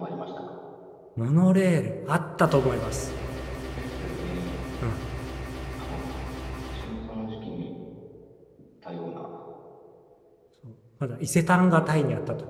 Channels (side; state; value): both; identical; correlation 1.00